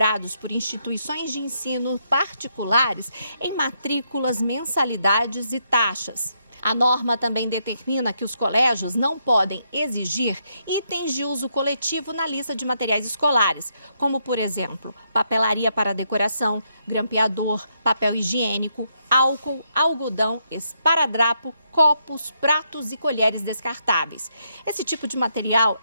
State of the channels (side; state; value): both; inverted; correlation -0.77